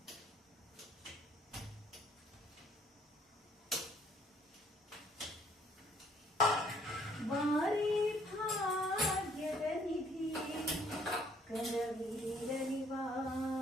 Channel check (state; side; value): normal; both; correlation 0.63